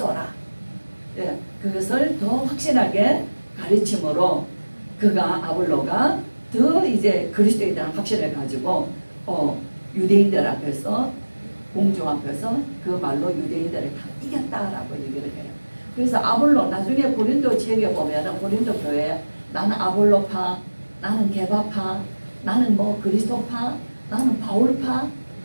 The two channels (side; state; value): both; inverted; correlation -1.00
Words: 예, 그것을 더 확실하게 가르침으로 그가 아볼로가 더 이제 그리스도에 대한 확신을 가지고 유대인들 앞에서 공중 앞에서 그 말로 유대인들을 다 이겼다라고 얘기를 해요. 그래서 아볼로 나중에 고린도 지역에 보면은 고린도 교회 나는 아볼로파, 나는 게바파, 나는 뭐 그리스도파, 나는 바울파.